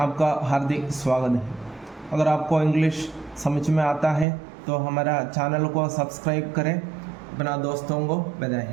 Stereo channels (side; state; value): left; drops out; at 4.2 s